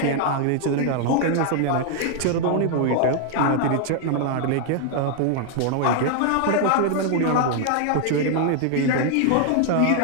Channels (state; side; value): different; both; correlation 0.00